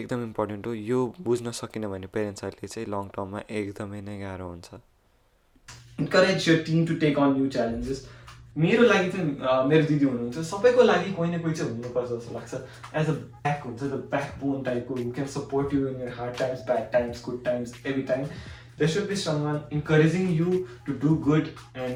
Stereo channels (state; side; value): identical; both; correlation 1.00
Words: एकदम इम्पोर्टेन्ट हो. यो बुझ्न सकिन भने पेरेन्ट्सहरूले चाहिँ लङ टर्ममा एकदमै नै गाह्रो हुन्छ. Encourage your team to take on new challenges. मेरो लागि चाहिँ मेरो दिदी हुनुहुन्छ, सबैको लागि कोही न कोही चाहिँ हुनुपर्छ जस्तो लाग्छ. एज अ ब्याक हुन्छ, द ब्याक बोन टाइपको who can support you in your hard times, bad times, good times, every time. There should be someone encouraging you to do good